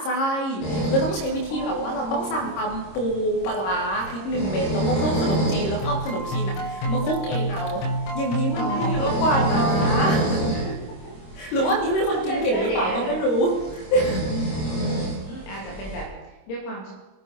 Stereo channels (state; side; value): late; right; 26 ms